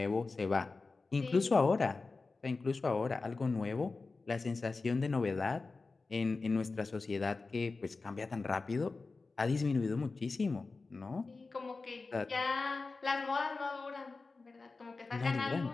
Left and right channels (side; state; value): right; quieter; 3.9 dB